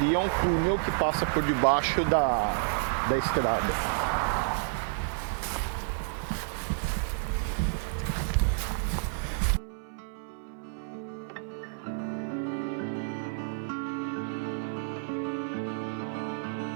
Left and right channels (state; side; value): silent; left; 58 dB below the other